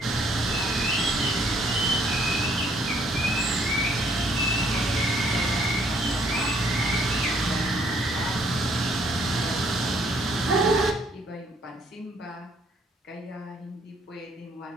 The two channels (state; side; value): normal; both; correlation 0.65